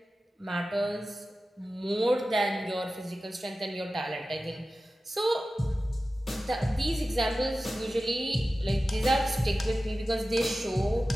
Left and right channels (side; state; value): both; normal; correlation 0.95